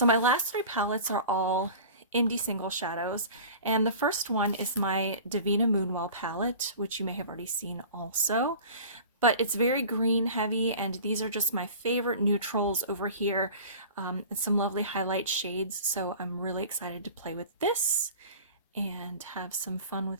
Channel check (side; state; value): both; inverted; correlation -0.39